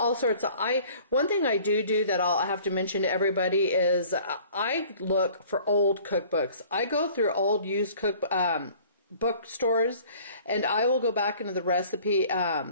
sorts of. One thing I do that I'll have to mention to everybody is I look for old cookbooks. I go through old used bookstores, and I will go back into the recipe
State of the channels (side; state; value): both; inverted; correlation -0.51